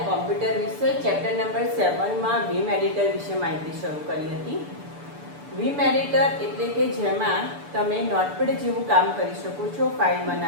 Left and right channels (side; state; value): left; late; 6.9 ms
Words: કોમ્પ્યુટર વિષય ચેપ્ટર નંબર 7 માં વીમ એડિટર વિશે માહિતી શરૂ કરી હતી. વીમ એડિટર એટલે કે જેમાં તમે નોટપેડ જેવું કામ કરી શકો છો, ફાઇલ